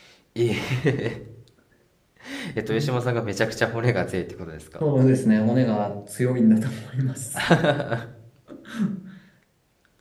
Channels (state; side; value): identical; both; correlation 1.00